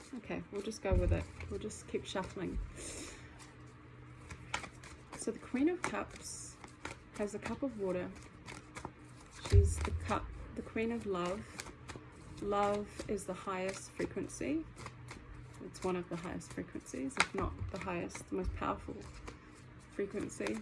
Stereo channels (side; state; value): both; identical; correlation 1.00